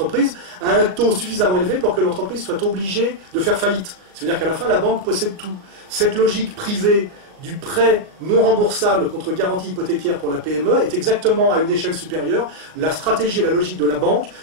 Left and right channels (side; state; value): left; late; 38 ms